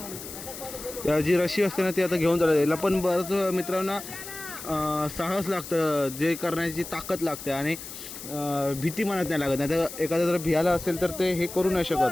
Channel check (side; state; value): left; noise; hiss, 11 dB below the sound